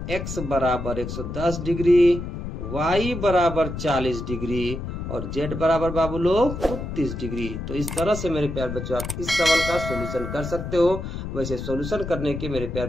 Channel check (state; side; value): noise; left; rumble, 6 dB below the sound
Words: x बराबर 110 डिग्री, y बराबर 40 डिग्री और z बराबर बाबू लोग 30 डिग्री। तो इस तरह से मेरे प्यारे बच्चों आप इस सवाल का सॉल्यूशन कर सकते हो। वैसे सॉल्यूशन करने के मेरे